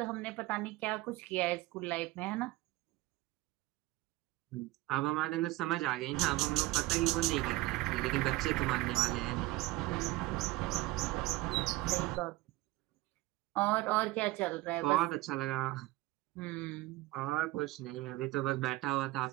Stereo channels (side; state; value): left; quieter; 19.1 dB